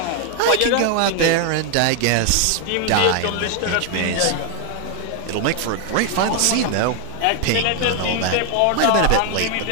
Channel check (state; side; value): different; both; correlation 0.00